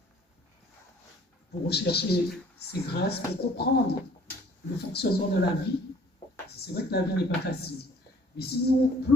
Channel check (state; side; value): normal; both; correlation 0.55